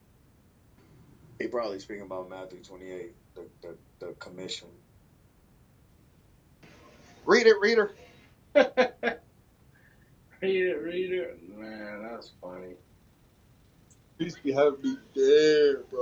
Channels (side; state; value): both; identical; correlation 1.00